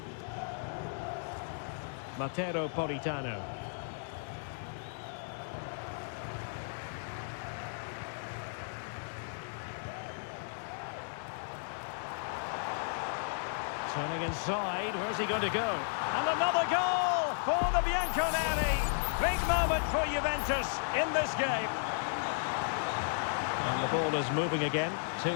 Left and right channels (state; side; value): silent; right; digital silence